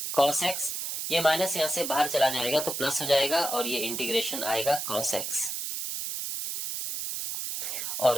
cos x, ये माइनस यहां से बाहर चला जाएगा तो प्लस हो जाएगा और ये इंटीग्रेशन आएगा cos x और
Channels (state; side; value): noise; right; hiss, 4 dB below the sound